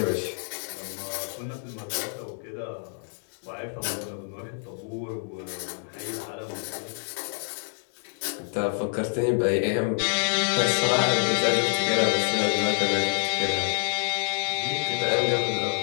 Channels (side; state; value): right; silent; 60 dB below the other